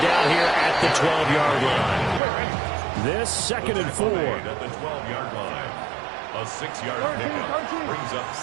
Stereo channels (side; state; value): left; drops out; at 2.2 s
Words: down here at the 12-yard line. This 2nd and 4. At the 12-yard line. A 6-yard pickup brings up